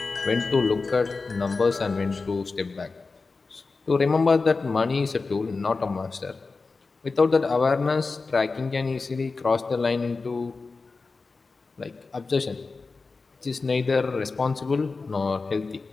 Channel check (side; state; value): right; quieter; 4.1 dB